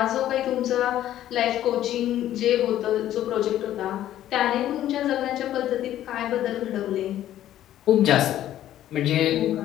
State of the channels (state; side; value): quieter; right; 12.5 dB